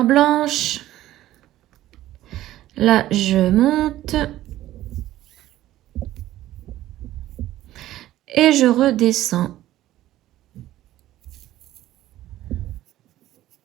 blanche. Là, je monte. Et je redescends.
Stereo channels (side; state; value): left; quieter; 14.4 dB